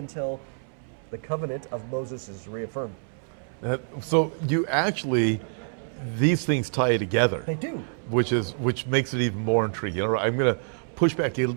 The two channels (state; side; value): silent; left; 60 dB below the other